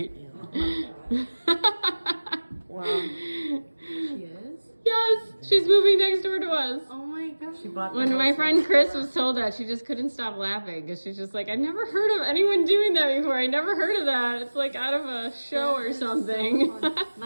Well, She is? Yes, she's moving next door to us. Oh my gosh. She bought the When house my friend next Chris door. was told that, she just couldn't stop laughing because she's just like, I never heard of anyone doing that before. I never heard of that. It's like out of a show or something.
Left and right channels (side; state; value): both; inverted; correlation -1.00